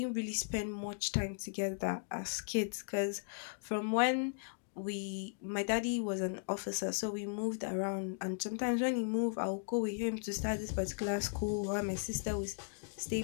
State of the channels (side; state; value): right; silent; digital silence